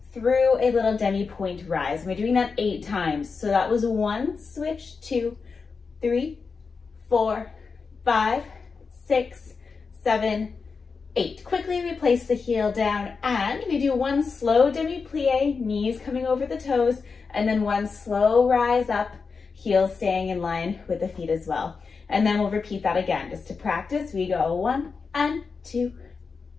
through a little demi-point rise. We're doing that 8 times. So that was 1, switch, 2, 3, 4, 5, 6, 7, 8. Quickly we place the heel down and we do 1 slow demi-plie, knees coming over the toes, and then 1 slow rise up, heels staying in line with the feet as well. And then we'll repeat that again. Just to practice, we go 1 and 2,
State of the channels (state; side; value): quieter; right; 5.0 dB